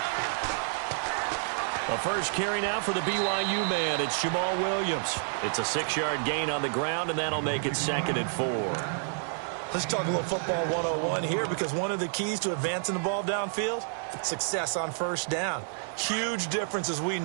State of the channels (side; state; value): left; silent; digital silence